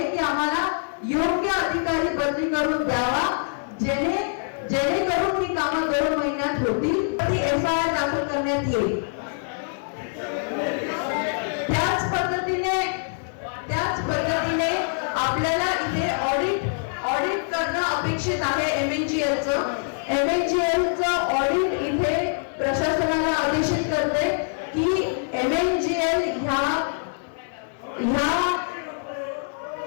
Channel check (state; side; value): silent; right; 62 dB below the other